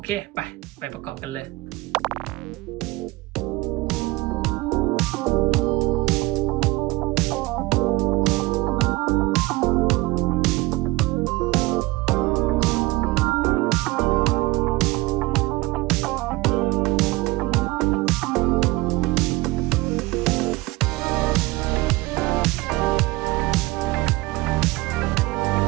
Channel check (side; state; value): left; quieter; 21.5 dB